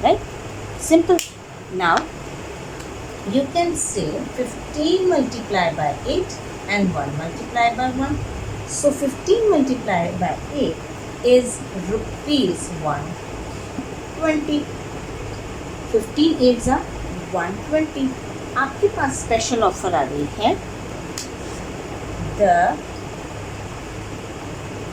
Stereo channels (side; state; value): both; identical; correlation 1.00